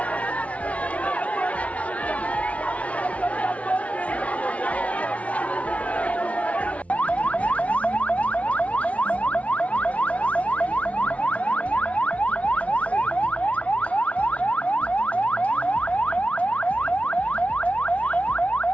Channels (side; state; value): right; late; 0.065 ms